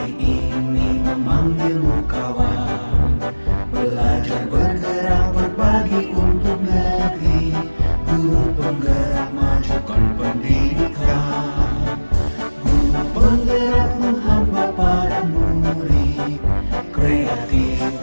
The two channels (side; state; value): both; inverted; correlation -1.00